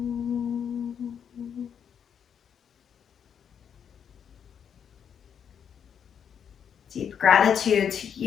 Deep gratitude to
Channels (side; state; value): right; quieter; 7.9 dB